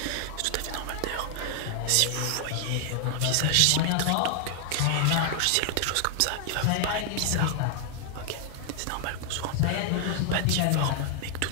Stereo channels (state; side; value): different; both; correlation 0.00